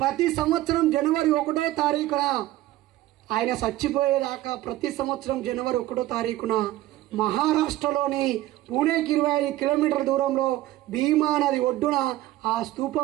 ప్రతి సంవత్సరం జనవరి 1వ తారీఖున ఆయన చచ్చిపోయేదాకా ప్రతి సంవత్సరం జనవరి 1వ తారీఖున మహారాష్ట్రలోని పూణేకి 25 కిలోమీటర్ల దూరంలో భీమా నది ఒడ్డున ఆ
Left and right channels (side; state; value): left; quieter; 15.5 dB